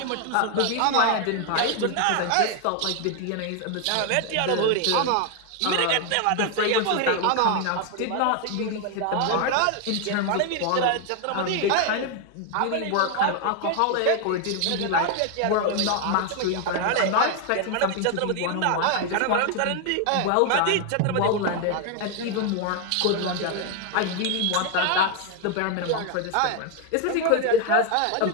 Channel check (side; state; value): both; different; correlation 0.01